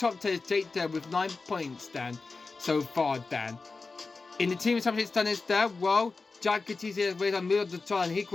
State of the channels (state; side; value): quieter; right; 4.0 dB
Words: 10 is Jake there with 9 points then so far then. In the team championship standings there, well, Jack Gattisi has raised on middle of the time and